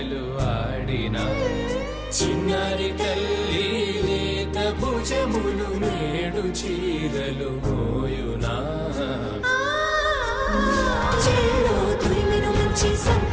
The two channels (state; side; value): identical; both; correlation 1.00